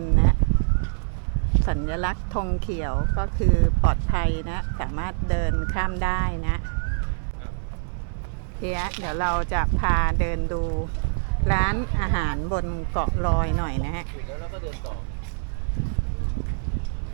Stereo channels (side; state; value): left; silent; 62 dB below the other